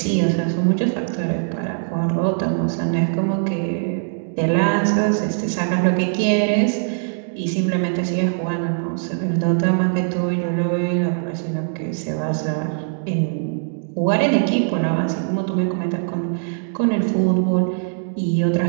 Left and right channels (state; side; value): silent; left; digital silence